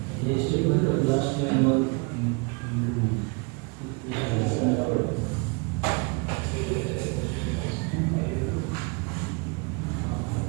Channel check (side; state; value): left; quieter; 31.8 dB